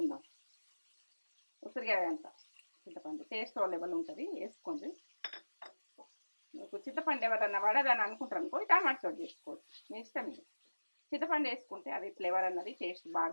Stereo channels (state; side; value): inverted; both; correlation -1.00